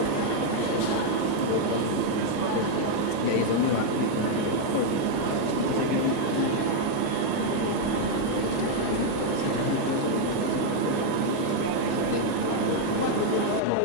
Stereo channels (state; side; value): different; both; correlation 0.00